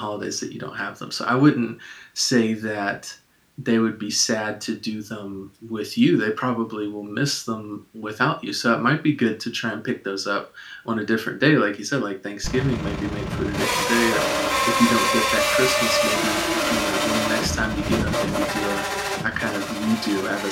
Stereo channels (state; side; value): identical; both; correlation 1.00